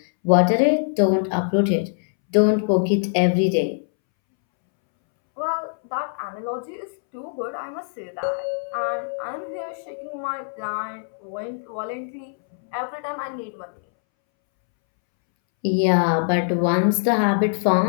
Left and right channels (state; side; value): silent; right; 63 dB below the other